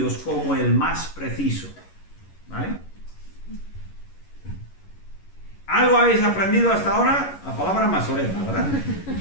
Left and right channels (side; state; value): right; late; 11 ms